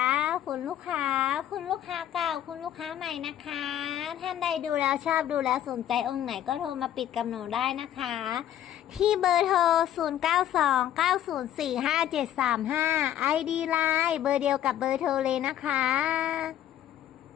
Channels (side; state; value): right; quieter; 11.4 dB